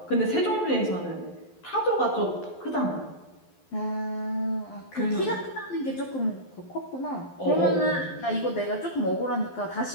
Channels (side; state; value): right; late; 12 ms